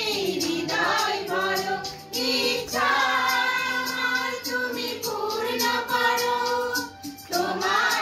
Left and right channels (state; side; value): identical; both; correlation 1.00